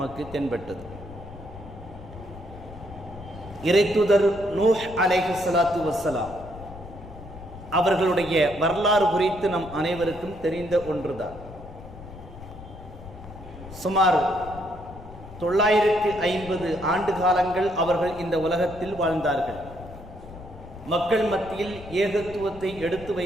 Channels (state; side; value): noise; left; rumble, 15 dB below the sound